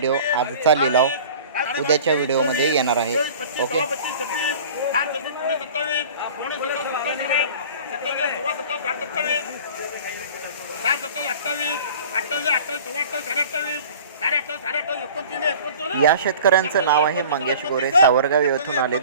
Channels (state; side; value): inverted; both; correlation -0.43